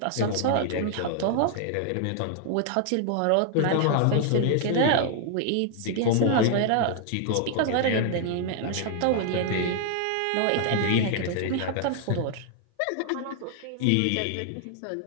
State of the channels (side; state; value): both; different; correlation 0.00